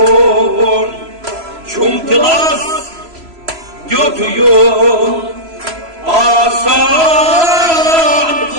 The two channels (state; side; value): late; left; 3.0 ms